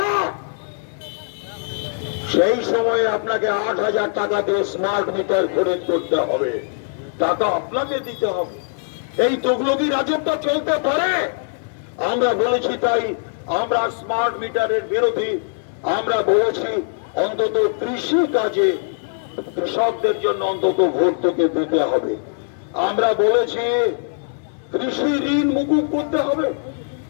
সেই সময়ে আপনাকে 8,000 টাকা দিয়ে স্মার্ট মিটার খরিদ করতে হবে। টাকা আপনাকে দিতে হবে। এই তুগলকি রাজত্ব চলতে পারে? আমরা বলেছি, তাই আমরা স্মার্ট মিটারের বিরোধী। আমরা বলেছি অন্তত কৃষি কাজে কৃষকদের জন্য অন্তত ভর্তুকি দিতে হবে। আমরা বলেছি কৃষি ঋণ মুকুব করতে হবে,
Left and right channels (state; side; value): silent; right; digital silence